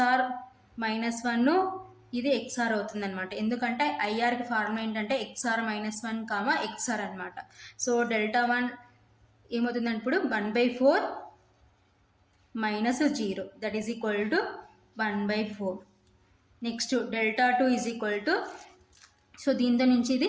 minus 1 ఇది XR అవుతుంది అనమాట. ఎందుకంటే ఐఆర్కి ఫార్ములా ఏంటంటే XR మైనస్ 1 కామా XR అనమాట. సో డెల్టా 1 ఏమవుతుందంటే ఇప్పుడు 1/4 minus 0 that is equal to 1/4. Next delta 2 is equal to so దీంతో నుంచి ఇది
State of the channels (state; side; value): identical; both; correlation 1.00